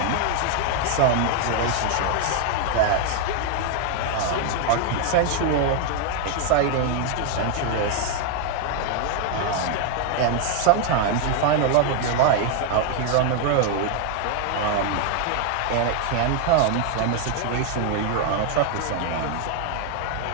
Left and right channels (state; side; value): different; both; correlation 0.01